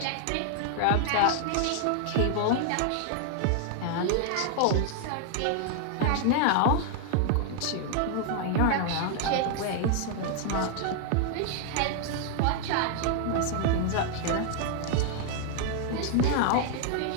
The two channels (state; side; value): different; both; correlation -0.01